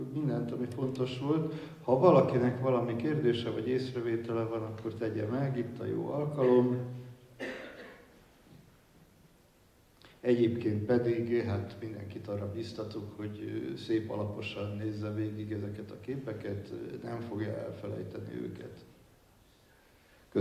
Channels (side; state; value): both; identical; correlation 1.00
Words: mindent, ami fontos volt. Ha valakinek valami kérdése vagy észrevétele van, akkor tegye meg, itt a jó alkalom. Egyébként pedig hát mindenkit arra biztatok, hogy szép alaposan nézze végig ezeket a képeket, nem fogja elfelejteni őket.